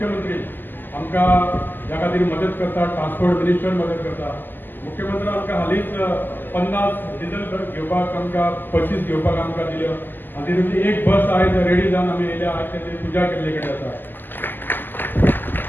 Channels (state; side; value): late; right; 0.091 ms